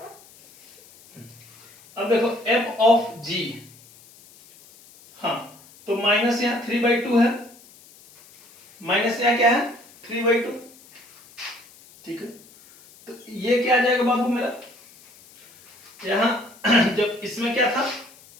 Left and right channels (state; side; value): noise; left; hiss, 25 dB below the sound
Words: अब देखो f ऑफ g, हाँ तो माइनस यहाँ 3/2 है, माइनस यहाँ क्या है 3/2, ठीक है। तो ये क्या आ जाएगा बाबू मेरा, यहां जब इसमें क्या था,